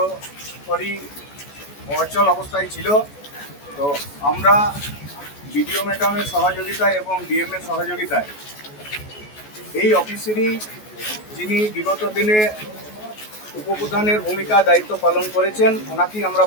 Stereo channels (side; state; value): right; late; 14 ms